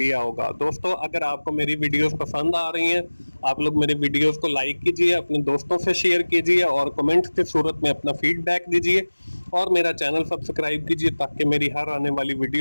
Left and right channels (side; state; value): both; inverted; correlation -1.00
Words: होगा। दोस्तों अगर आपको मेरी वीडियोस पसंद आ रही हैं, आप लोग मेरे वीडियोस को लाइक कीजिए, अपने दोस्तों से शेयर कीजिए और कमेंट की सूरत में अपना फीडबैक दीजिए और मेरा चैनल सब्सक्राइब कीजिए ताकि मेरी हर आने वाली